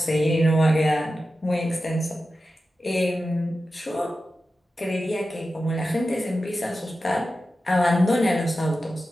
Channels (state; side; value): normal; both; correlation 0.92